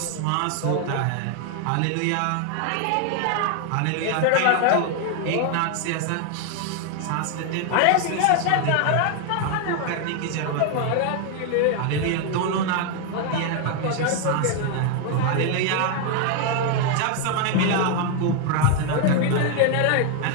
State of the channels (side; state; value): both; different; correlation 0.01